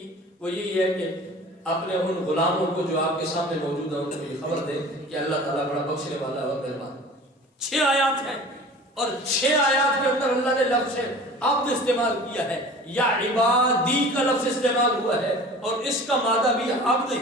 وہ یہی ہے کہ اپنے ان غلاموں کو جو آپ کے سامنے موجود ہیں ان کو یہ خبر دے کہ اللہ تعالیٰ بڑا بخشنے والا اور مہربان۔ 6 آیات ہیں اور 6 آیات کے اندر اللہ نے لفظ عبد استعمال کیا ہے، یا عبادی کا لفظ استعمال ہوا ہے، اور اس کا مادہ بھی عبد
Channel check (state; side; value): normal; both; correlation 0.42